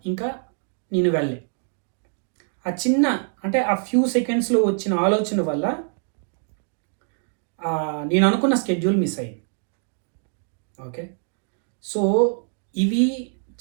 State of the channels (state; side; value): silent; left; 58 dB below the other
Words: ఇంకా నేను వెళ్ళే. ఆ చిన్న అంటే ఆ ఫ్యూ సెకండ్స్లో వచ్చిన ఆలోచన వల్ల నేను అనుకున్న స్కెడ్యూల్ మిస్ అయ్యింది. ఓకే. సో ఇవి